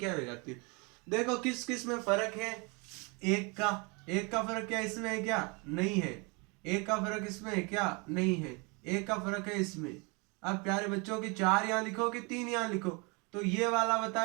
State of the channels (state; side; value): quieter; left; 30.4 dB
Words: हो जाती है। देखो किस किस में फर्क है, एक का फर्क क्या इसमें है क्या, नहीं है। एक का फर्क इसमें है क्या, नहीं है। एक का फर्क है इसमें। अब प्यारे बच्चों की 4 यहाँ लिखो कि 3 यहाँ लिखो, तो ये वाला